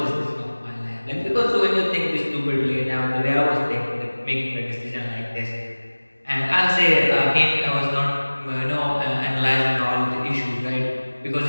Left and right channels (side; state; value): both; inverted; correlation -1.00